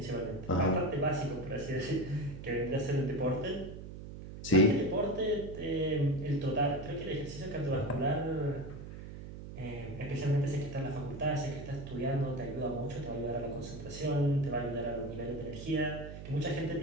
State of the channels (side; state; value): right; noise; hum, 11 dB below the sound